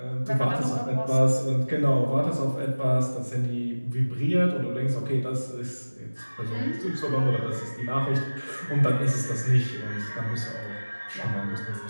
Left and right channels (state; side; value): inverted; both; correlation -1.00